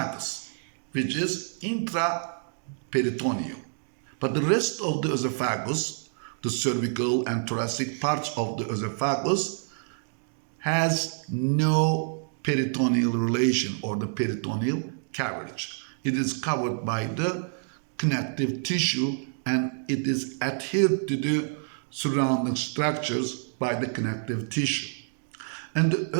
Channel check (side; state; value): left; silent; digital silence